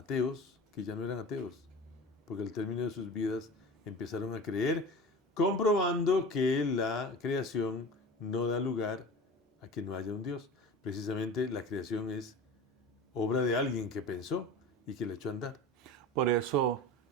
que ya no eran ateos, porque al término de sus vidas empezaron a creer, comprobando que la creación no da lugar a que no haya un Dios. Precisamente la creación es obra de alguien que pensó y que le echó a andar. Por eso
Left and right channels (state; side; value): normal; both; correlation 0.34